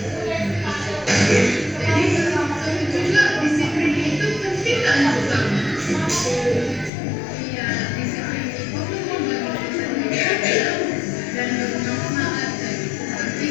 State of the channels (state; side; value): drops out; right; at 6.9 s